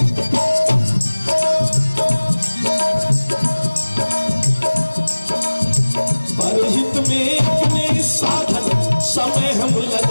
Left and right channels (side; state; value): both; inverted; correlation -1.00